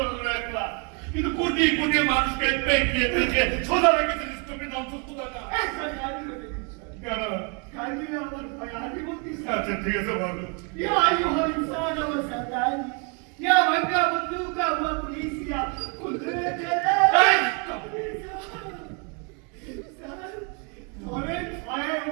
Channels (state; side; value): quieter; left; 34.8 dB